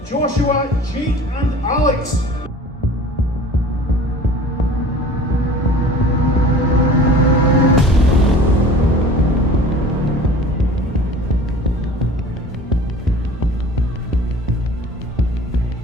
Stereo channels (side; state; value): both; normal; correlation 0.43